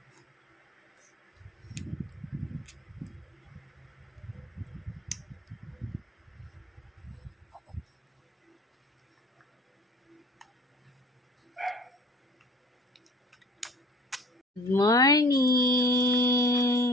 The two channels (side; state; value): both; normal; correlation 0.48